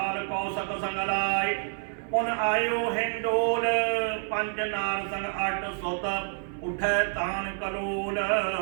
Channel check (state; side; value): silent; left; 59 dB below the other